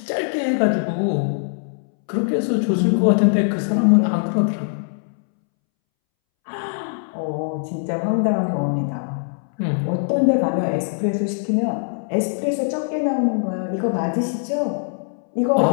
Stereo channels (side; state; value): right; silent; 65 dB below the other